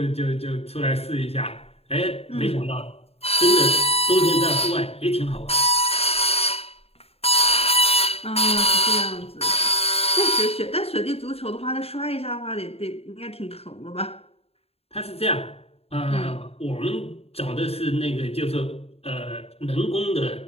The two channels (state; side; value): late; right; 0.29 ms